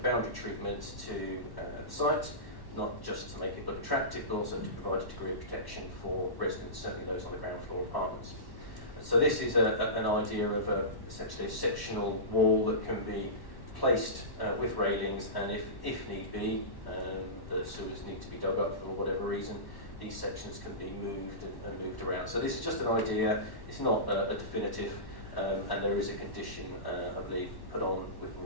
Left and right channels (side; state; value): right; late; 1.1 ms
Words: boundary treatment to the site, not just to make it look attractive, but also to provide a degree of protection for residents, certainly those on the ground floor apartments. And so this is an idea of essentially a sectional wall that can be placed with railings, and if need be, the sewers need to be dug up for whatever reason, these sections can be moved and moved around. So this is just an idea, it's not a definitive and there is a condition, I believe, put on with